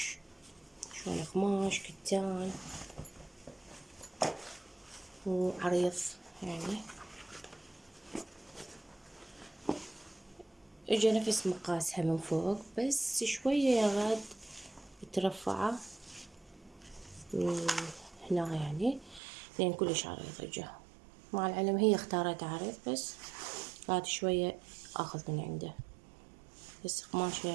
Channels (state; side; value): drops out; left; at 19.2 s